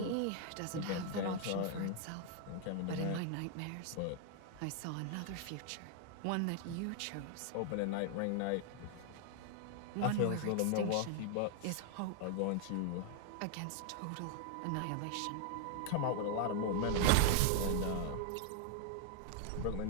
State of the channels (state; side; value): different; both; correlation 0.00